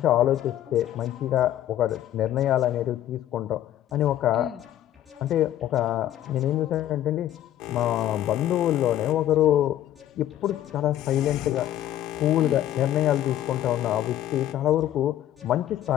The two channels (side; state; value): right; quieter; 12.4 dB